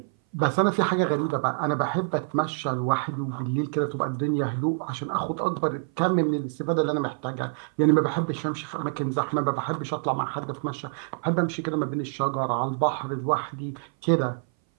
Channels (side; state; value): left; silent; 58 dB below the other